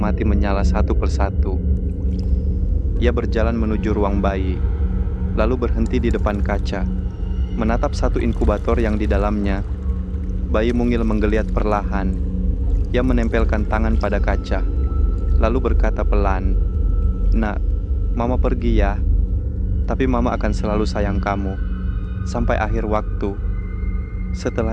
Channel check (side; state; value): both; identical; correlation 1.00